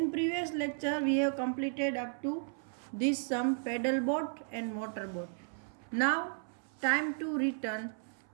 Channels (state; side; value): silent; left; 55 dB below the other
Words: previous lecture, we have completed up to this sum pedal boat and motor boat. Now, time to return.